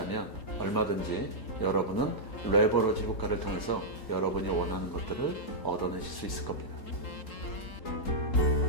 얼마든지 여러분은 레버러지 효과를 통해서 여러분이 원하는 것들을 얻어내실 수 있을 겁니다.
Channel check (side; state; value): right; late; 3.8 ms